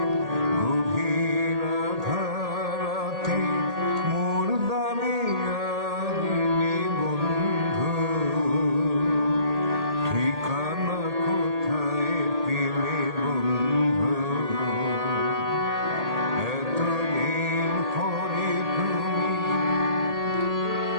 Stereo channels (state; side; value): late; left; 1.8 ms